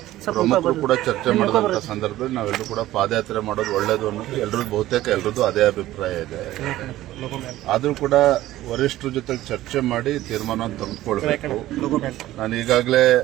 ಪ್ರಮುಖರು ಕೂಡ ಚರ್ಚೆ ಮಾಡಿದಂತ ಸಂದರ್ಭದಲ್ಲಿ ನಾವೆಲ್ಲರೂ ಕೂಡ ಪಾದಯಾತ್ರೆ ಮಾಡೋದು ಒಳ್ಳೇದು ಅನ್ನೋದು ಬಹುತೇಕ ಎಲ್ರದ್ದು ಅದೇ ಅಭಿಪ್ರಾಯ ಇದೆ. ಆದ್ರೂ ಕೂಡ ವರಿಷ್ಠರ ಜೊತೆ ಚರ್ಚೆ ಮಾಡಿ ತೀರ್ಮಾನ ತೆಗೆದುಕೊಳ್ಬೇಕು. ನಾನು ಈಗಾಗಲೇ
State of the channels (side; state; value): left; quieter; 15.2 dB